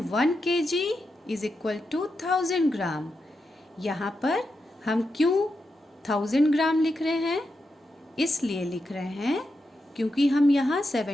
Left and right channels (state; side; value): normal; both; correlation 0.87